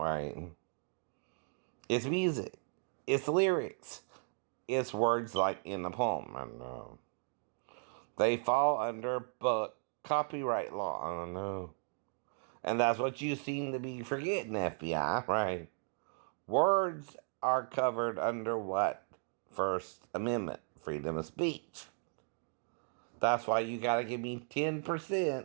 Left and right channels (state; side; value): silent; left; 54 dB below the other